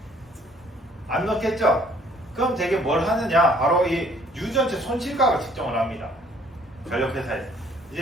안 넣겠죠? 그럼 되게 뭘 하느냐? 바로 이 유전체 손실각을 측정을 합니다. 전력회사에서.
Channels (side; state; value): both; normal; correlation 0.59